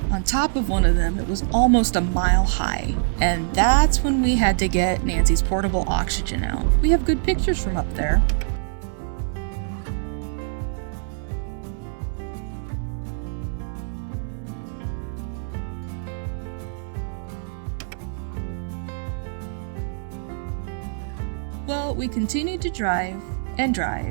top of one of them, it was almost a mile high. And that's when we had to get Nancy's portable oxygen out. We have good pictures from up there. Well, we continued to drive and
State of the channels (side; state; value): left; silent; 62 dB below the other